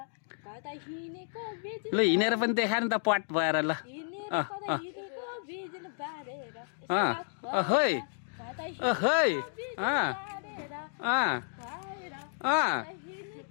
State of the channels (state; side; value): silent; right; digital silence